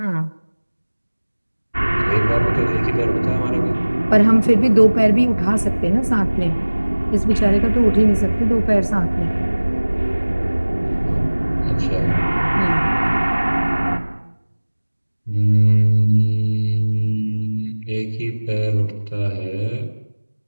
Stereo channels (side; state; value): both; inverted; correlation -1.00